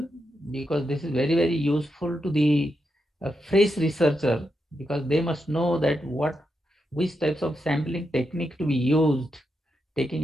because this is very useful to the fresh researcher, because they must know that which types of sampling technique to be used, taking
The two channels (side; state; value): both; normal; correlation 0.85